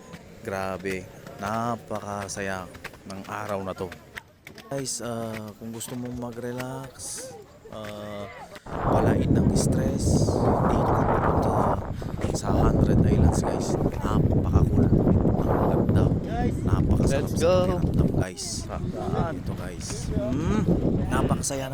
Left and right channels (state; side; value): identical; both; correlation 1.00